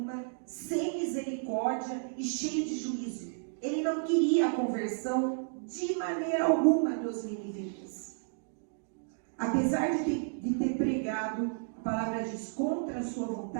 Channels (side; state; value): left; silent; digital silence